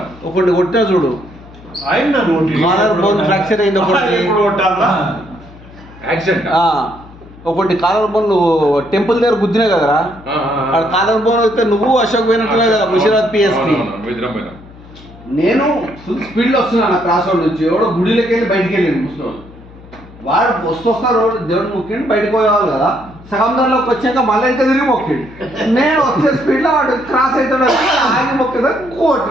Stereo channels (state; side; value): noise; left; hum, 21 dB below the sound